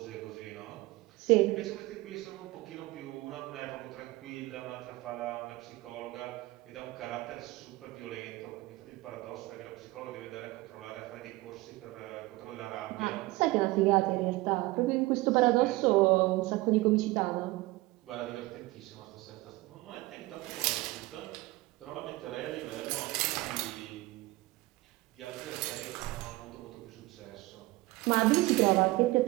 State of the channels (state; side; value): quieter; left; 20.5 dB